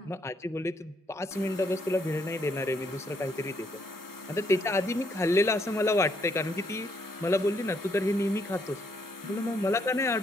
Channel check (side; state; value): both; normal; correlation 0.72